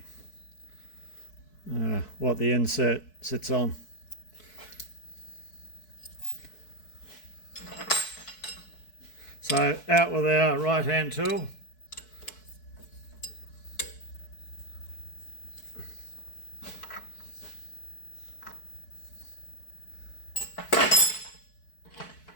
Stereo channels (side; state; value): right; late; 4.6 ms